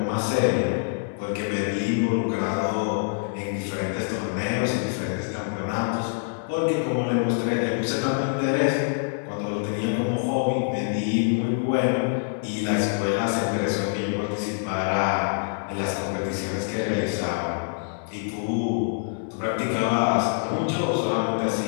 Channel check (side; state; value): right; silent; digital silence